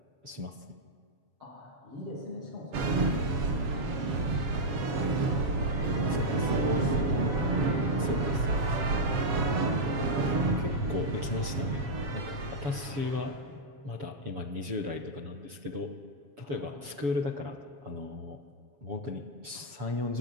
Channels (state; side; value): late; left; 7.2 ms